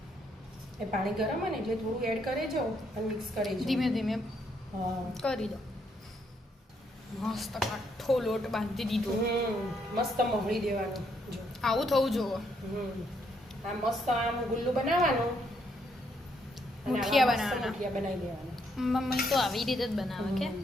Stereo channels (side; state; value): both; normal; correlation 0.74